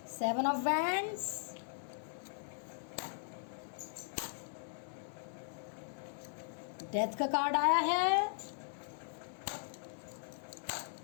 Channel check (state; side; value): silent; right; 52 dB below the other